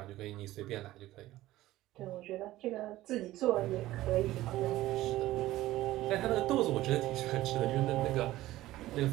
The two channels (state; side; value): quieter; left; 16.0 dB